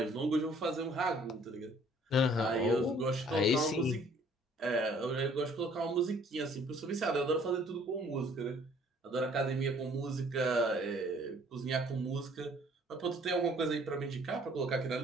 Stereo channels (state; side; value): normal; both; correlation 0.58